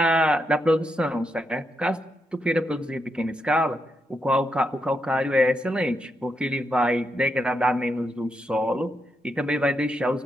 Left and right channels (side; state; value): both; normal; correlation 0.83